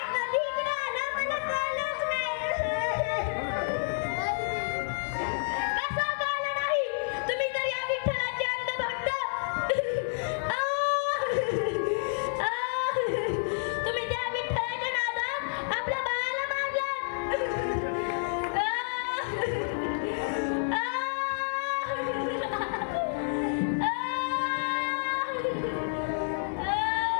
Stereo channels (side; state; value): right; silent; digital silence